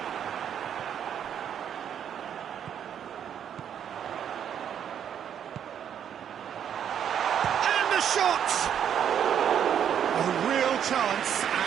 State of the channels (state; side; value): quieter; left; 9.0 dB